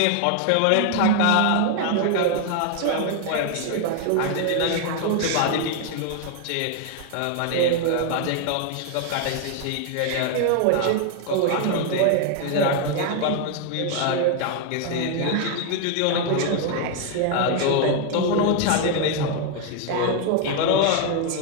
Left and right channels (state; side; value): different; both; correlation 0.01